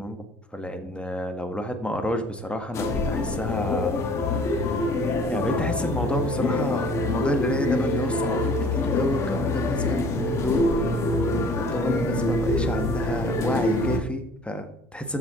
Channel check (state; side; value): normal; both; correlation 0.51